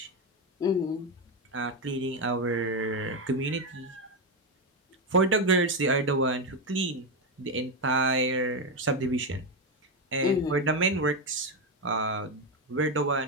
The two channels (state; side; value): normal; both; correlation 0.09